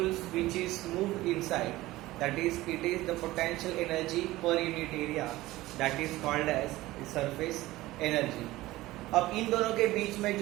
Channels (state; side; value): quieter; left; 17.7 dB